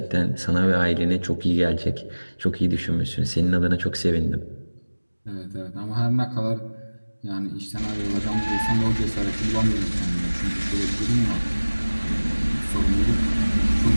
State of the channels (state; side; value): inverted; both; correlation -1.00